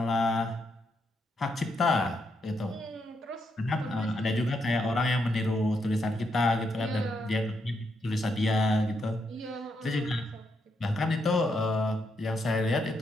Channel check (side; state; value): both; normal; correlation 0.79